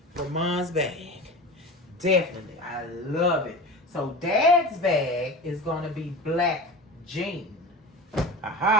for Mom's bag. Definitely. I love it. So Dad's bag is going to be black jean.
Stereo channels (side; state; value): both; normal; correlation 0.32